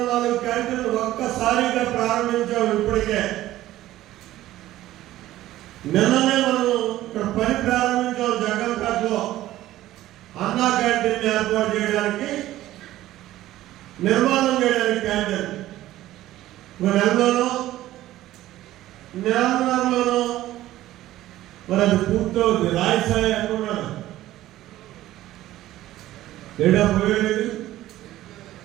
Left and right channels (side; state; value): left; quieter; 14.8 dB